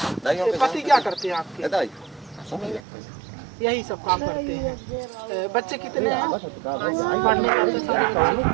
पति क्या करते हैं आपके? यही सब काम करते हैं। बच्चे कितने हैं? पढ़ने जाते हैं सारे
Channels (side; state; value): left; drops out; at 2.8 s